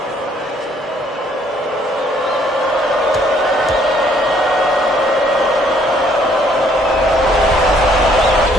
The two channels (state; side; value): normal; both; correlation 0.64